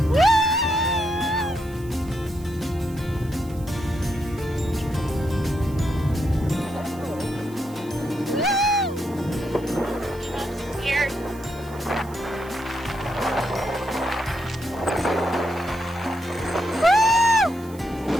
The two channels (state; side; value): noise; right; hiss, 23 dB below the sound